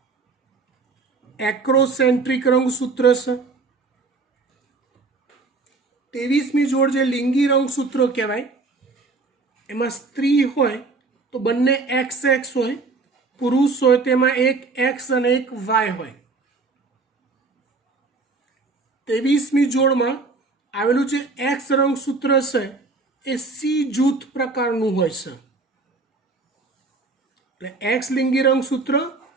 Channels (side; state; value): left; quieter; 3.9 dB